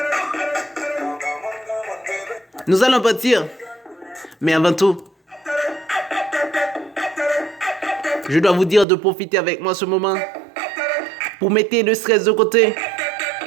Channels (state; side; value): drops out; left; at 8.8 s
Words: Nous allons partir. Mais avant tout, je dois vous dire de profiter avec moi ce moment pour mettre le stress de côté